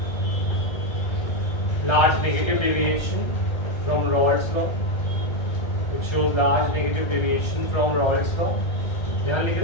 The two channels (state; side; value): late; right; 1.3 ms